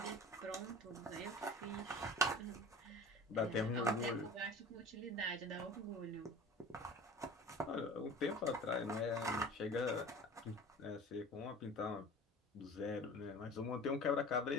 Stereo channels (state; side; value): normal; both; correlation 0.40